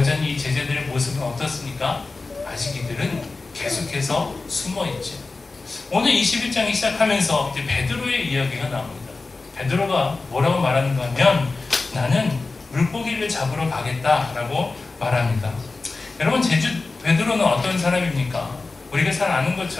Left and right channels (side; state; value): right; quieter; 3.7 dB